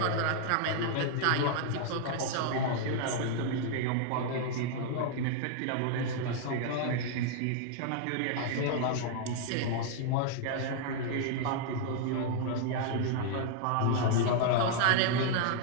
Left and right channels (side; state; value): both; different; correlation 0.00